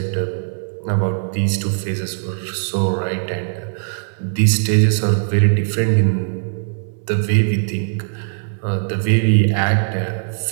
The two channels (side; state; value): left; silent; digital silence